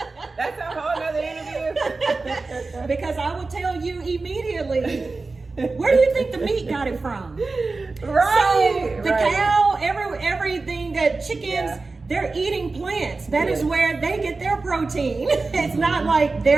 That's a whole other interview. Because I will tell you immediately, where do you think the meat got it from? Right. So the cow, everything that chickens, they're eating plants. That is where they get their protein. It's not like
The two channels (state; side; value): quieter; left; 3.7 dB